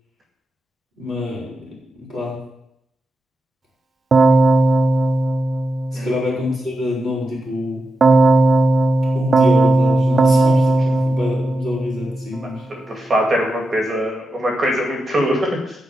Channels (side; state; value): both; normal; correlation 0.89